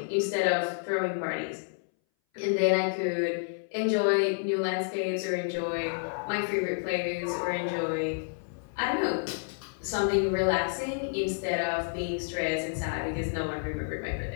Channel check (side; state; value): right; silent; 58 dB below the other